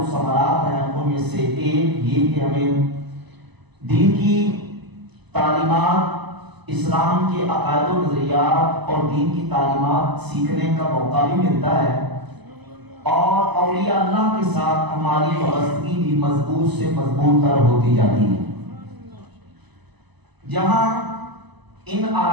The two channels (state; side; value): late; left; 1.0 ms